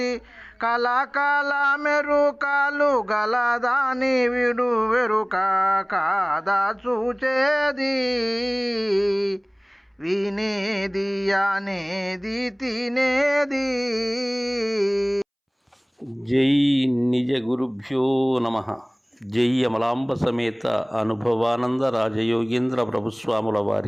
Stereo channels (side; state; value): both; identical; correlation 1.00